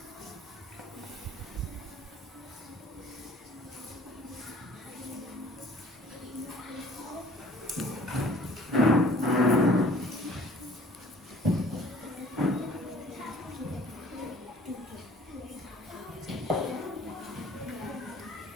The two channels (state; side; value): normal; both; correlation 0.52